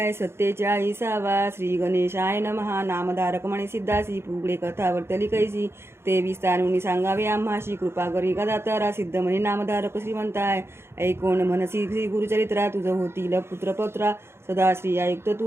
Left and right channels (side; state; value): left; late; 0.12 ms